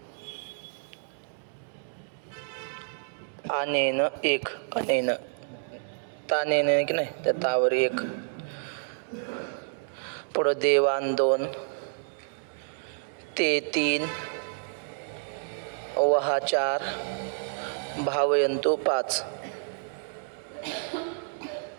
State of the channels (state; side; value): silent; left; digital silence